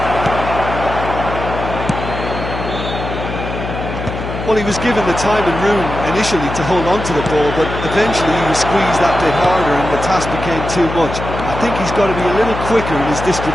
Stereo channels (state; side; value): noise; left; hum, 6 dB below the sound